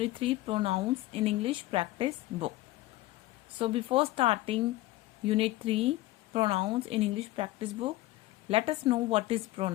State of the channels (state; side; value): quieter; right; 17.6 dB